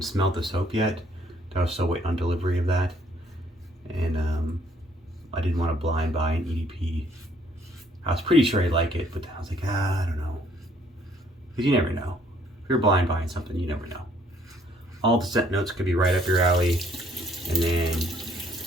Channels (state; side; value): normal; both; correlation 0.65